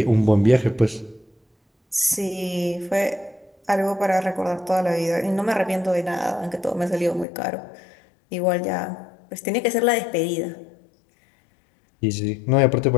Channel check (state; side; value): drops out; right; at 7.2 s